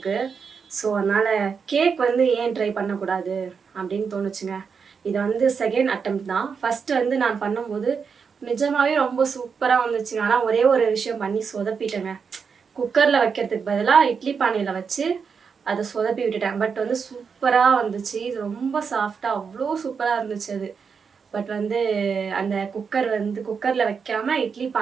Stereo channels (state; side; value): quieter; left; 6.0 dB